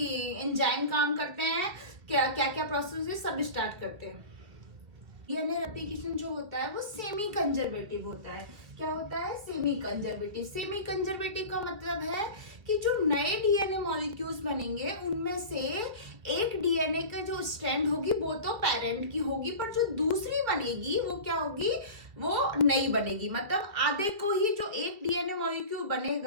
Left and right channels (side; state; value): left; late; 2.2 ms